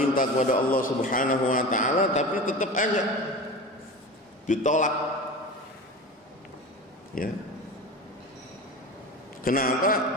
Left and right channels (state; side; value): normal; both; correlation 0.31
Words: kepada Allah Subhanahu Wa Taala, tapi tetap aja ditolak. Ya, kenapa?